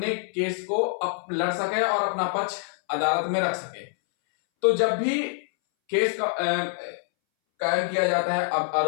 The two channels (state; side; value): silent; right; 61 dB below the other